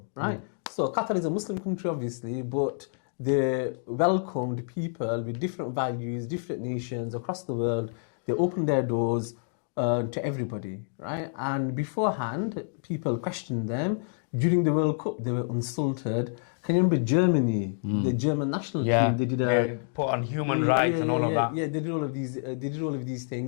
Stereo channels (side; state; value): right; silent; digital silence